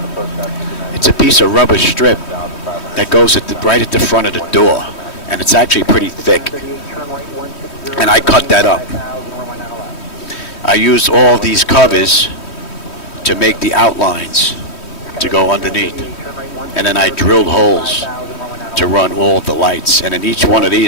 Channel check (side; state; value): right; late; 3.1 ms